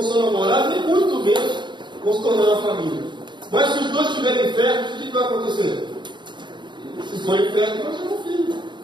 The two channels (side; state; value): left; late; 0.22 ms